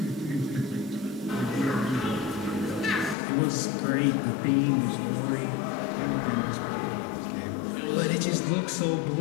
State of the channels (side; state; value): right; drops out; at 3.2 s